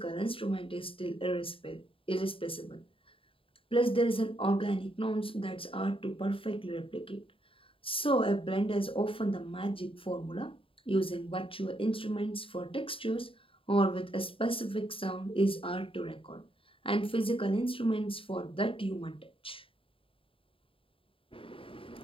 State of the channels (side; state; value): right; late; 0.26 ms